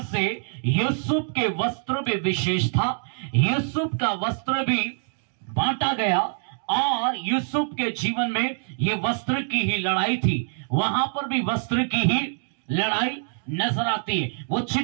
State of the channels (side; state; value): left; silent; digital silence